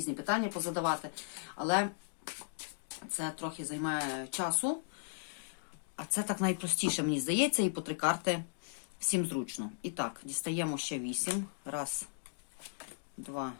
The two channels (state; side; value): silent; right; digital silence